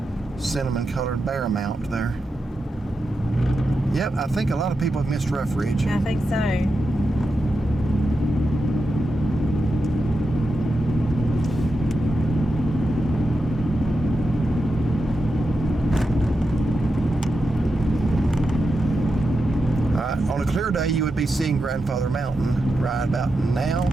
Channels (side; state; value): both; normal; correlation 0.88